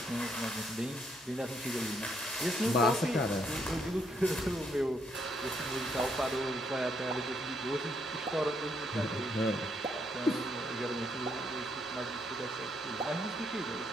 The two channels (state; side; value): normal; both; correlation 0.73